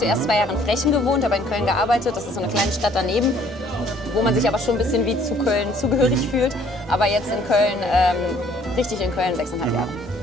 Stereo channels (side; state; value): both; normal; correlation 0.60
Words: 2 Jahre in Frechen gewohnt, aber in Köln gearbeitet. Das ist so eine kleine Stadt daneben, wo man sich aber schon ein bisschen wie zu Köln zugehörig fühlt. Aber jetzt in Köln, richtig in Köln, 6,5 Jahre.